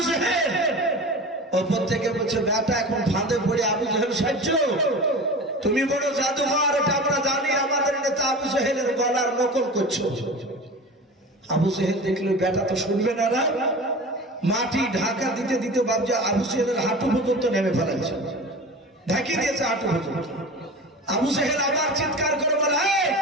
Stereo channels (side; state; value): both; normal; correlation 0.33